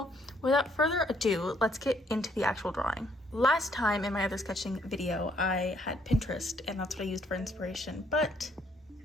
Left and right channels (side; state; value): both; normal; correlation 0.68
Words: without further ado, let's get into the actual drawing. Last time in my other sketching video, I had Pinterest, and that's what I used for inspiration. But